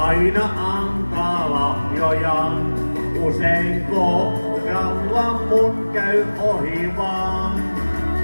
antaa lahjojaan. Usein kohdalla mun käy ohi vaan.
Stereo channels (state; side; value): inverted; both; correlation -1.00